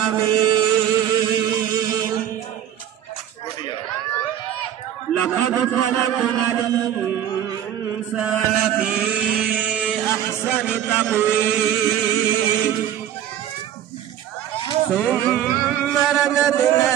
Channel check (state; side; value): quieter; left; 10.7 dB